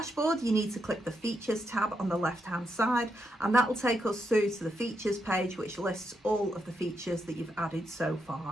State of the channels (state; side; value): normal; both; correlation 0.81